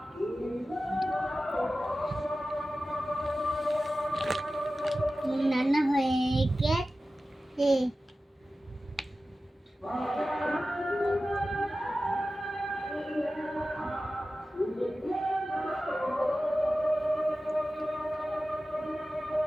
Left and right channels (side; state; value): both; normal; correlation 0.95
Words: নানা হয়ে গেছে।